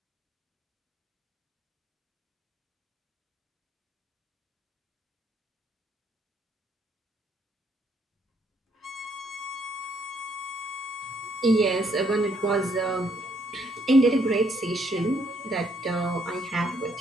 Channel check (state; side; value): normal; both; correlation 0.71